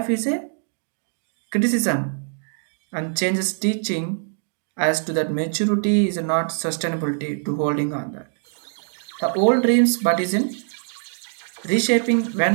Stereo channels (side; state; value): left; silent; digital silence